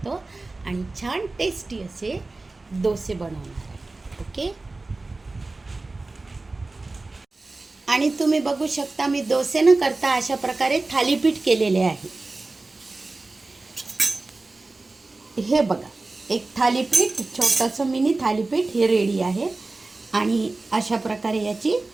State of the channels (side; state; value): left; quieter; 3.3 dB